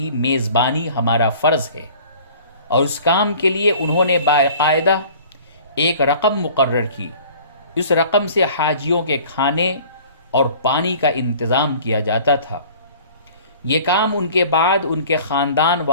میزبانی ہمارا فرض ہے، اور اس کام کے لیے انہوں نے باقاعدہ ایک رقم مقرر کی۔ اس رقم سے حاجیوں کے کھانے اور پانی کا انتظام کیا جاتا تھا۔ یہ کام ان کے بعد ان کے خاندان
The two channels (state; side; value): inverted; both; correlation -0.47